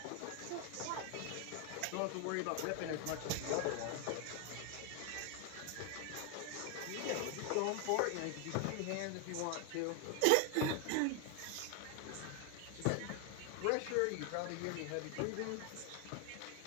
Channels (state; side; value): different; both; correlation 0.01